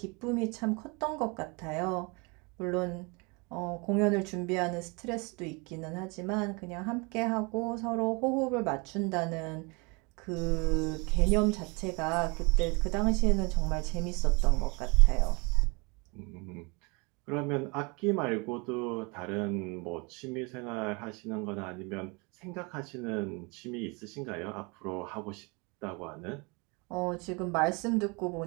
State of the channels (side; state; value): left; quieter; 29.6 dB